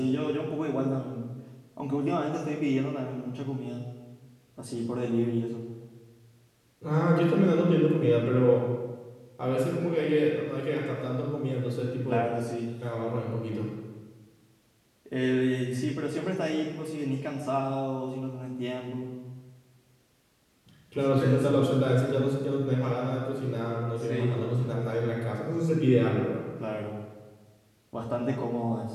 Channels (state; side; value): identical; both; correlation 1.00